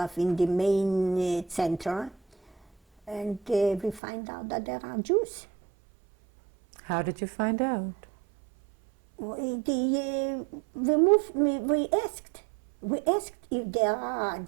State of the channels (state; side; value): drops out; left; at 4.0 s